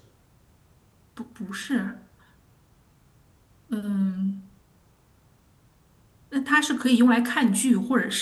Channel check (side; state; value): both; identical; correlation 1.00